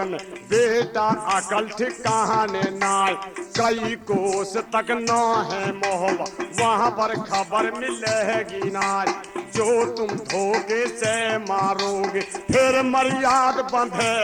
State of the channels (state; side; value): identical; both; correlation 1.00